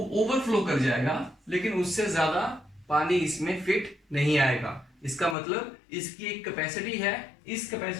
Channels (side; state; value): right; drops out; at 5.4 s